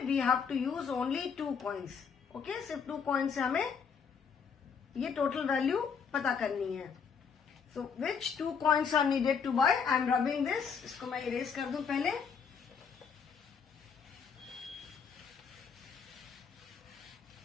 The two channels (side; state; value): right; quieter; 6.4 dB